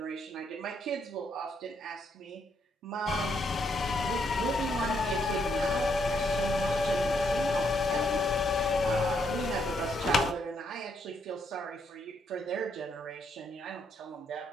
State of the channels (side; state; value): both; normal; correlation 0.75